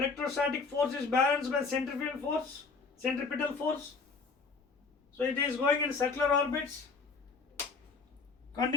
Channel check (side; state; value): right; quieter; 4.6 dB